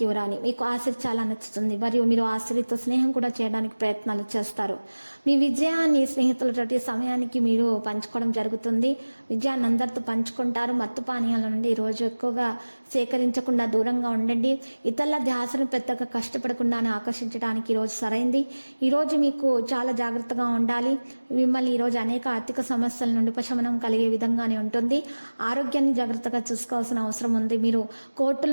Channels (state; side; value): inverted; both; correlation -1.00